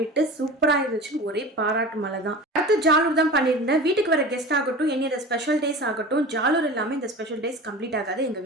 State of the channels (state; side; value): normal; both; correlation 0.34